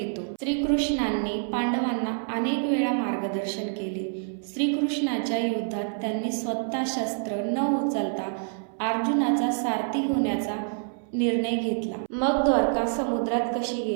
श्रीकृष्णांनी पांडवांना अनेक वेळा मार्गदर्शन केले। श्रीकृष्णाच्या युद्धात त्यांनी स्वतः शस्त्र न उचलता अर्जुनाचा सारथी होण्याचा निर्णय घेतला। मग द्वारका समुद्रात कशी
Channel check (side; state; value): left; silent; 60 dB below the other